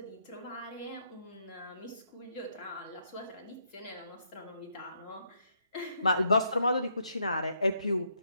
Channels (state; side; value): inverted; both; correlation -0.75